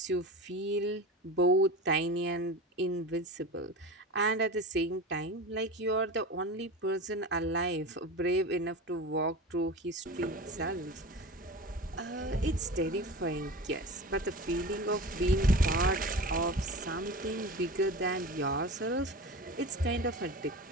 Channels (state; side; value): normal; both; correlation 0.30